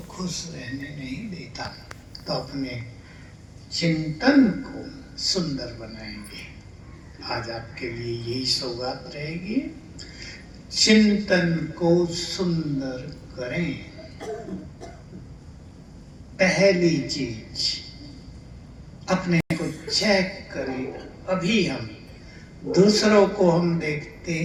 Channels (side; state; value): both; identical; correlation 1.00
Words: खुश रहने नहीं देता। तो अपने चिंतन को सुंदर बनाएंगे। आज आपके लिए यही सौगात रहेगी, चिंतन को सुंदर करें। पहली चीज, अपने को चेक करें। अभी हम दूसरों को हम देखते